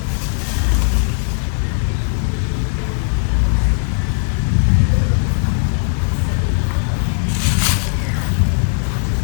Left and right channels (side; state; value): right; silent; 56 dB below the other